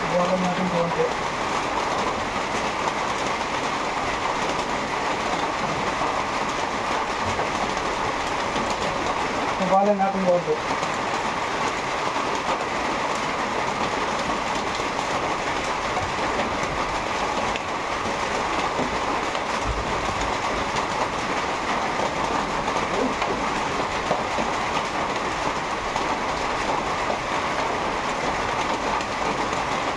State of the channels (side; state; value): both; identical; correlation 1.00